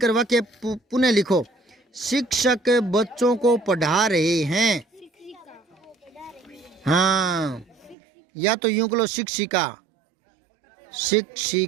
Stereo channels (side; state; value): left; drops out; at 8.0 s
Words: वाक्य पुनः लिखो। शिक्षक बच्चों को पढ़ा रहे हैं, हाँ, या तो यूं करो, शिक्षिका